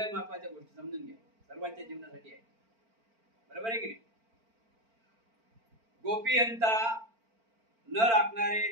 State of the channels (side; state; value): left; late; 4.4 ms